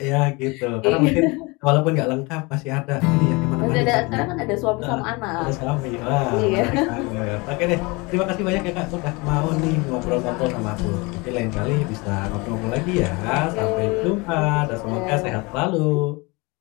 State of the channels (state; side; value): quieter; right; 26.3 dB